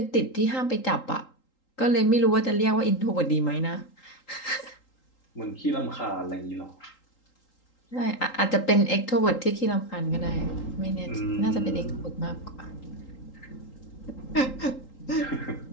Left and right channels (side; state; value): right; late; 3.8 ms